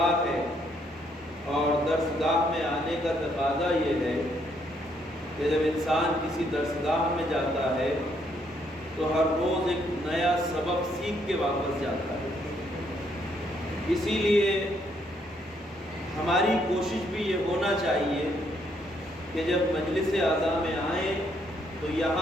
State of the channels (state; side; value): normal; both; correlation 0.72